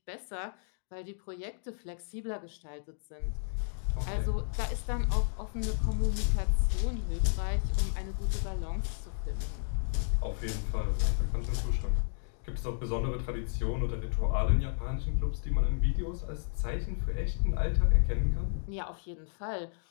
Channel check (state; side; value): silent; right; digital silence